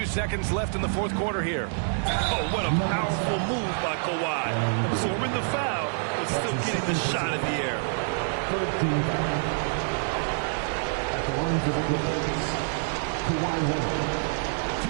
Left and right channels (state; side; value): silent; left; 60 dB below the other